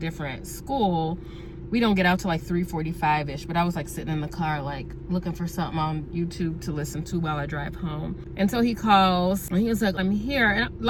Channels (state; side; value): identical; both; correlation 1.00